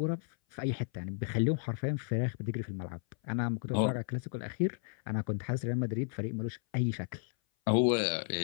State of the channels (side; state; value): right; silent; 55 dB below the other